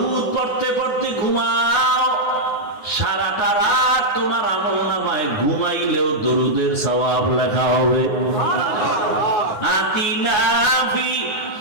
পড়তে পড়তে ঘুমাও, সারাটা রাত তোমার আমল নামায় ঘুমাইলেও দরুদের সওয়াব লেখা হবে। আতিনা ফি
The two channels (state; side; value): late; right; 9.7 ms